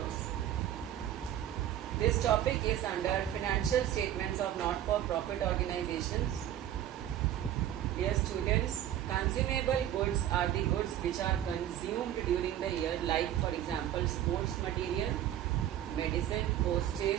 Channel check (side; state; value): left; quieter; 11.6 dB